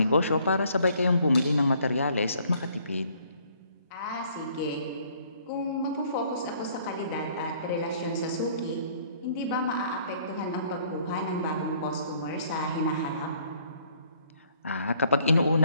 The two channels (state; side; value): inverted; both; correlation -0.61